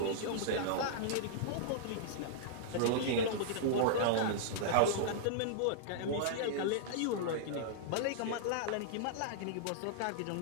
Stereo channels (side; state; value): both; different; correlation -0.02